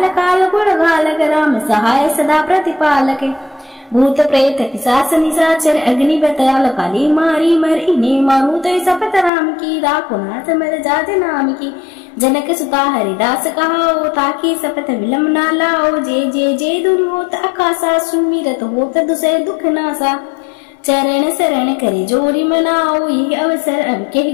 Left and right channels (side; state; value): right; drops out; at 9.3 s